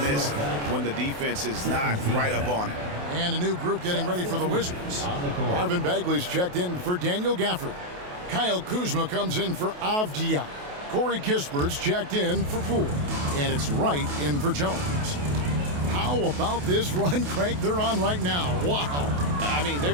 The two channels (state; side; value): late; left; 28 ms